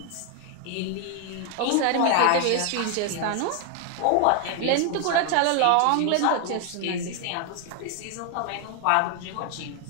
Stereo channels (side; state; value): both; different; correlation 0.00